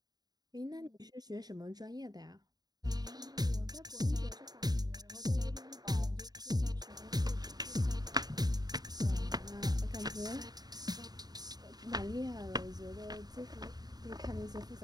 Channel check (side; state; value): left; late; 0.19 ms